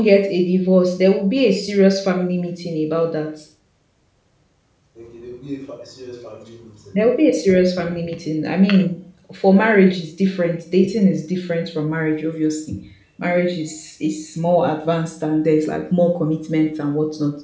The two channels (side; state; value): both; identical; correlation 1.00